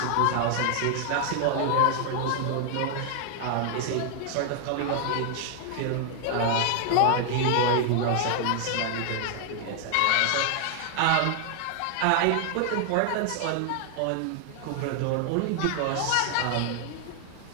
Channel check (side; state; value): both; different; correlation 0.00